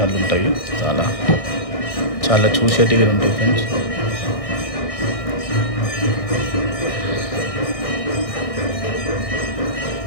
ఉంటాయి. చాలా చూసేటివి ఉంటాయి ఫ్రెండ్స్.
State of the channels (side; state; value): right; late; 1.6 ms